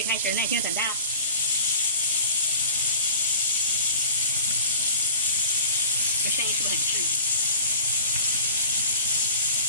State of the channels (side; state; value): both; inverted; correlation -0.41